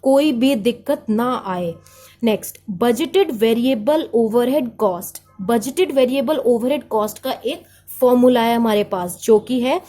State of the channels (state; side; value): identical; both; correlation 1.00